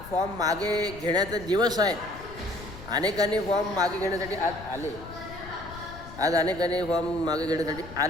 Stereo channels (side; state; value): left; noise; rumble, 15 dB below the sound